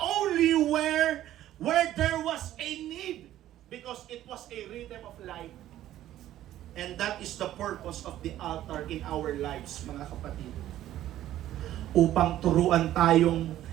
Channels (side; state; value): left; quieter; 13.1 dB